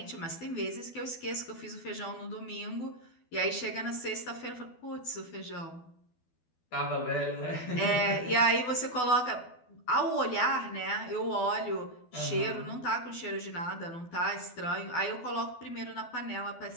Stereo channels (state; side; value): late; right; 12 ms